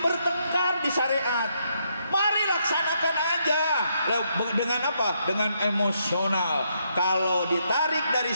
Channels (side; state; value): both; inverted; correlation -0.76